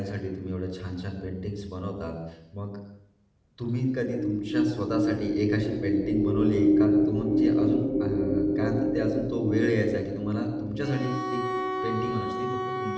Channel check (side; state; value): both; identical; correlation 1.00